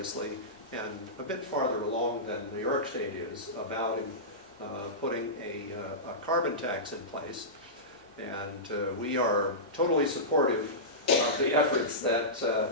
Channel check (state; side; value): normal; both; correlation -0.17